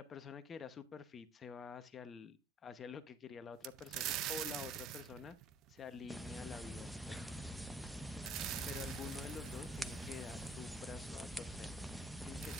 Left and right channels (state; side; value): normal; both; correlation 0.61